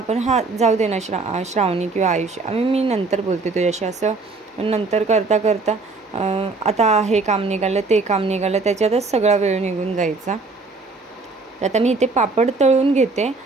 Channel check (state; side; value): quieter; left; 3.8 dB